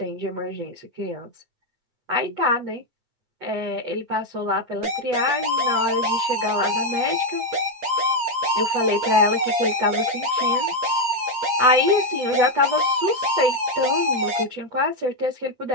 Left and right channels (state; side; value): late; left; 8.7 ms